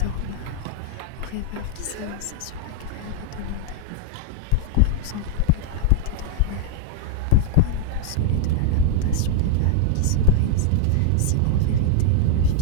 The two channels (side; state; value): both; different; correlation 0.00